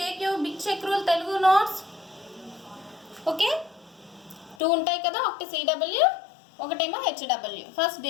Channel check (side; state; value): right; drops out; at 4.5 s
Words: take you big check rule Telugu notes. Okay 2 ఉంటాయి కదా, ఒకటి సిడబ్ల్యూ ఒకటేమో హెచ్డబ్ల్యూ. ఫస్ట్